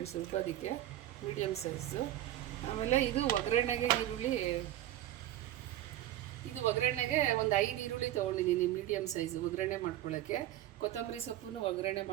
ರುಬ್ಬೋದಕ್ಕೆ, ಮೀಡಿಯಮ್ ಸೈಜು. ಆಮೇಲೆ ಇದು ಒಗ್ಗರಣೆಗೆ ಈರುಳ್ಳಿ. ಇದು ಒಗ್ಗರಣೆಗೆ ಒಂದು 5 ಈರುಳ್ಳಿ ತೊಗೊಂಡಿದ್ದೀನಿ, ಮೀಡಿಯಮ್ ಸೈಜು, ಒಗ್ಗರಣೆ ಮಾಡ್ಕೊಳ್ಳೋಕ್ಕೆ. ಕೊತ್ತಂಬರಿ ಸೊಪ್ಪನ್ನು ಒಗ್ಗರಣೆ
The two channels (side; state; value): left; quieter; 13.5 dB